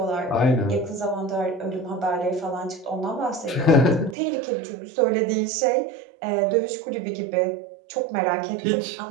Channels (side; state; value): left; drops out; at 4.2 s